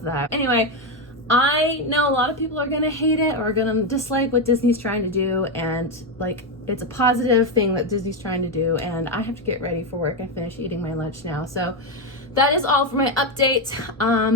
that. Anyway, I know a lot of people are gonna hate it or are gonna dislike what Disney's trying to do, and like it's a positive thing that Disney's trying to do, and I have to get ready for work. I finished eating my lunch now, so that is all for my update.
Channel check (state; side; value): normal; both; correlation 0.08